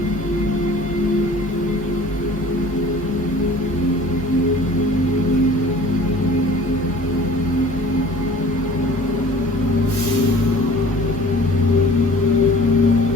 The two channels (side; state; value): both; normal; correlation 0.47